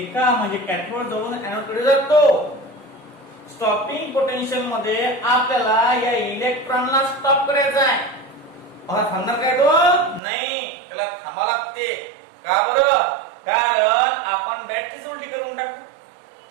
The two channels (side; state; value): left; drops out; at 10.2 s